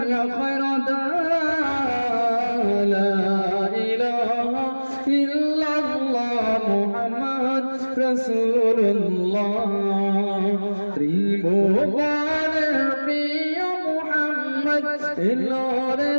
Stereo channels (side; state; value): both; inverted; correlation -1.00